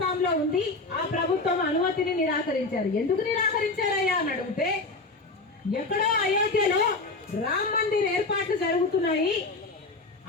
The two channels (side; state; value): right; quieter; 3.4 dB